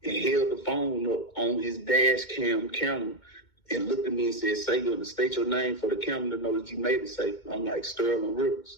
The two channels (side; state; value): right; late; 2.2 ms